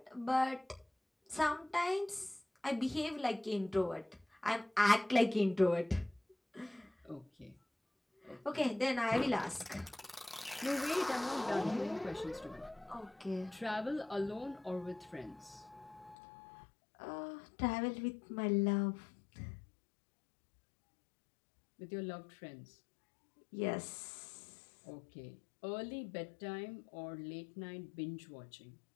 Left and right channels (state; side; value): drops out; right; at 16.2 s